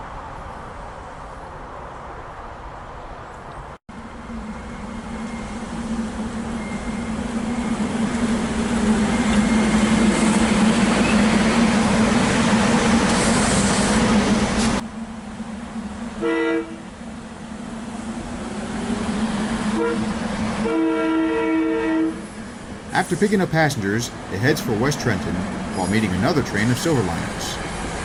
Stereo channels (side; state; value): both; identical; correlation 1.00